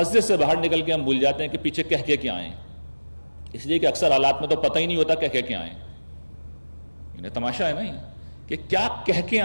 سے باہر نکل کے ہم بھول جاتے ہیں کہ پیچھے کہہ کے آئے ہیں، اس لیے کہ اکثر حالات میں تو پتہ ہی نہیں ہوتا کہہ کے آئے ہیں. انہیں تماشا ہے نا یہ کہ کیا کہہ کے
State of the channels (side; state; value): both; inverted; correlation -1.00